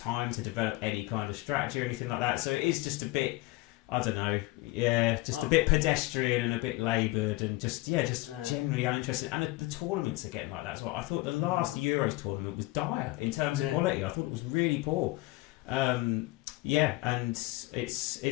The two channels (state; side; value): quieter; right; 20.4 dB